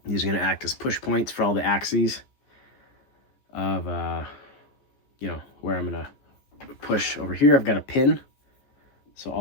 These are going to act as push points for all the axes of, where I'm going to push over here. I've got a pin. So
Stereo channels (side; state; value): right; late; 14 ms